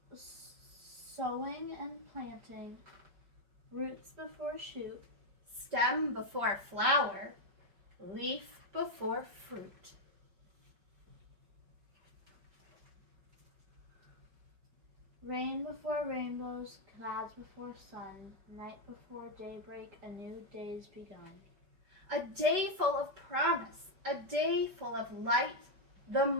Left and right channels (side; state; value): left; late; 5.1 ms